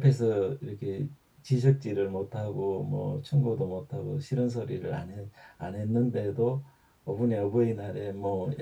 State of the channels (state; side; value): identical; both; correlation 1.00